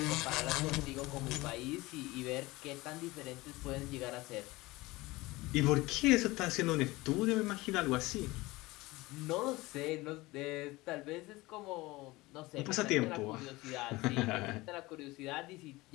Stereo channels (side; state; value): right; quieter; 20.8 dB